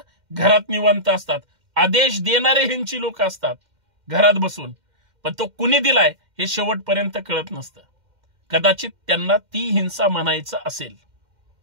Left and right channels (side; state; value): left; late; 2.1 ms